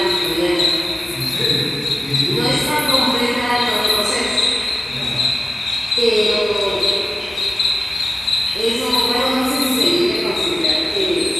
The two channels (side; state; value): both; normal; correlation 0.95